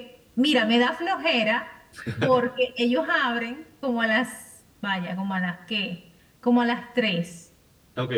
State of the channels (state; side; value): identical; both; correlation 1.00